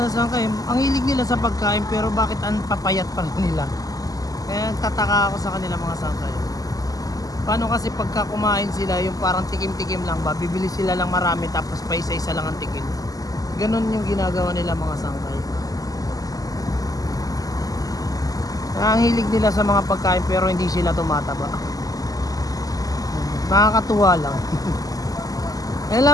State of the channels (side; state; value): right; late; 0.17 ms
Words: sa sangkay, ang hilig nila sa pagkain, pero bakit ang papayat pa rin nila? Kaya tataka ako sa kanila mga sangkay. Paano kasi pagka kumain sila, yung parang tikim-tikim lang ba, bibili sila lang marami tapos pa isa-isa lang ang tikim. Ganon yung ginagawa nila mga sangkay. Ang hilig nila sa mga pagkain pero hindi sila tumataba. Nakakatuwa lang. Yan lang